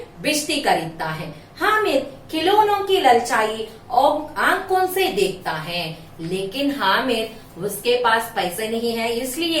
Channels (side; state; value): both; identical; correlation 1.00